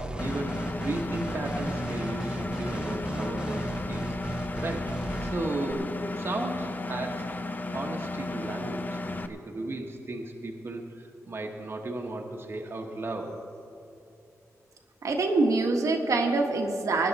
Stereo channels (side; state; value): both; normal; correlation 0.80